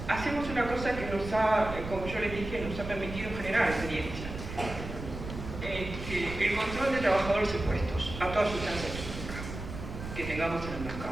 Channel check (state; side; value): noise; right; rumble, 9 dB below the sound